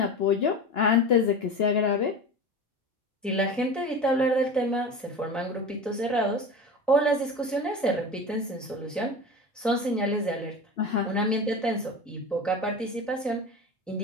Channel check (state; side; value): normal; both; correlation 0.30